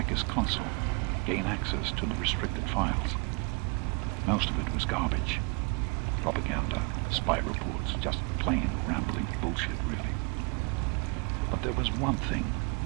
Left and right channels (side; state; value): left; quieter; 31.4 dB